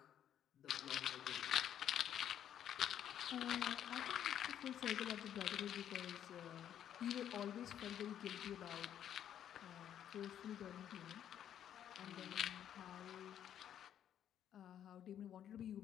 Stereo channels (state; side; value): quieter; right; 10.1 dB